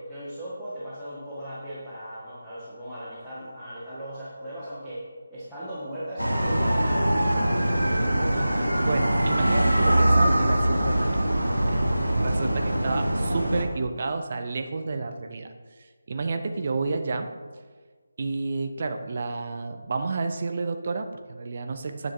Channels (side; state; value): both; inverted; correlation -0.95